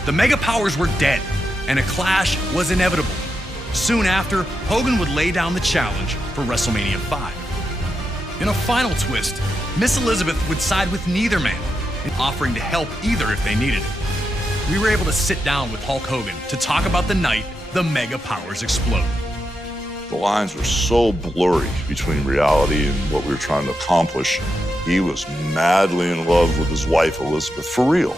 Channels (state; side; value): normal; both; correlation 0.86